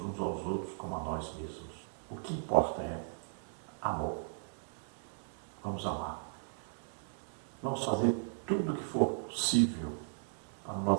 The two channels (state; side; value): silent; left; digital silence